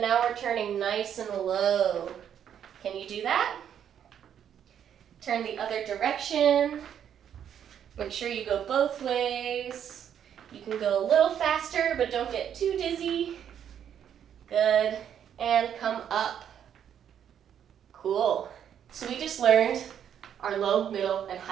we're turning nice and low. Can you do that? Turn the other direction. Make sure you go both ways. You can go a little faster, but don't get too dizzy. Good. And come up. Cool. So we just learned our low, middle, and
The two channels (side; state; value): left; quieter; 9.1 dB